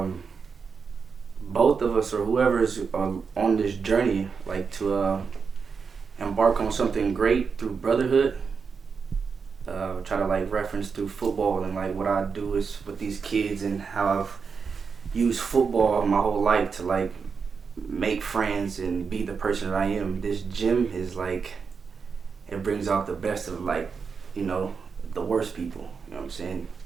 both of us, or whoever is on this journey, like to embark on something great through brotherhood. Try to like reference through football, and like what I do is with these kids, and how I've used football my whole life to like make friends and be the person that I am. This gym is like, it brings out the best of like, the worst people. You know what I'm saying?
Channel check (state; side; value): quieter; left; 5.6 dB